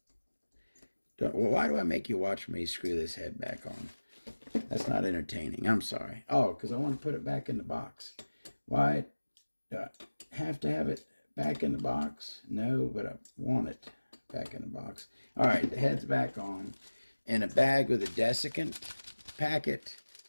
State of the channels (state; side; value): inverted; both; correlation -1.00